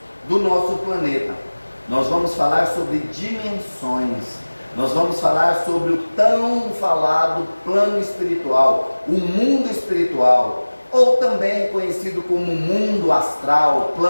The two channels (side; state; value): both; inverted; correlation -1.00